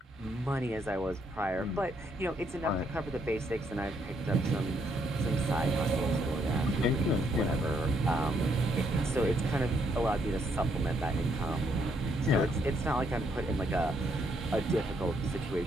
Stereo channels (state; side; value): normal; both; correlation 0.73